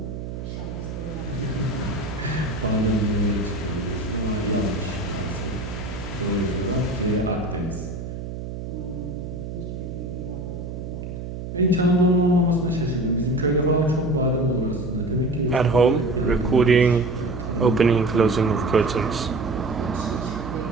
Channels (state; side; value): noise; right; hum, 7 dB below the sound